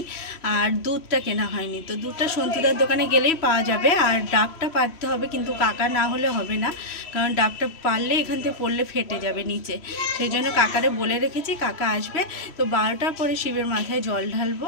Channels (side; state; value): right; late; 3.1 ms